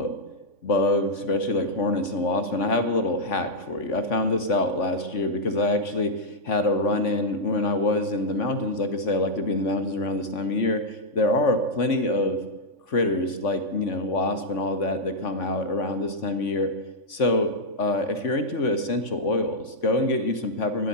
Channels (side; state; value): right; late; 3.5 ms